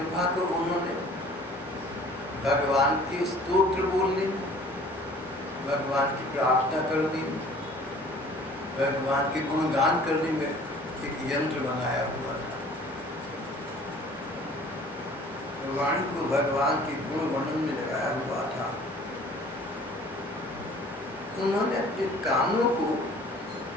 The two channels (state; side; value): normal; both; correlation 0.50